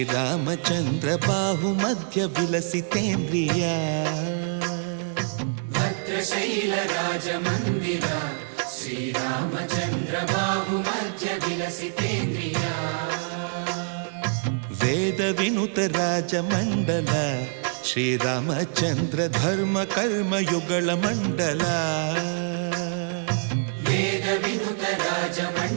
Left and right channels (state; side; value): silent; left; digital silence